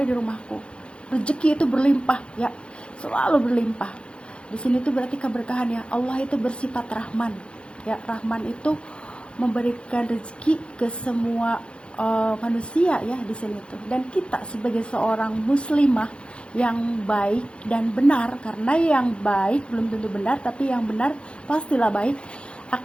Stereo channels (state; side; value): late; right; 0.057 ms